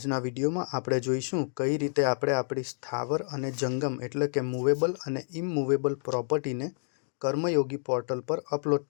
વિડીયોમાં આપણે જોઈશું કઈ રીતે આપણે આપણી સ્થાવર અને જંગમ એટલે કે મૂવેબલ અને ઇમૂવેબલ પ્રોપર્ટીને કર્મયોગી પોર્ટલ પર અપલોડ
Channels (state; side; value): silent; right; digital silence